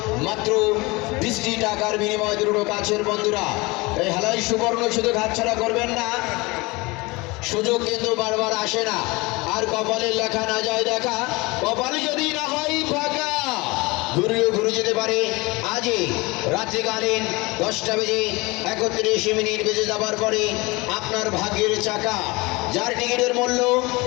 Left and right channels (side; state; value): right; quieter; 24.1 dB